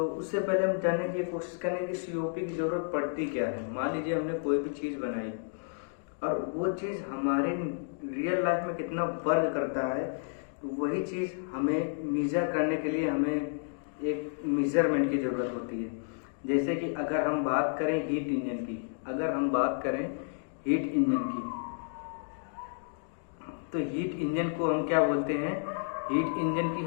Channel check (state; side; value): silent; right; digital silence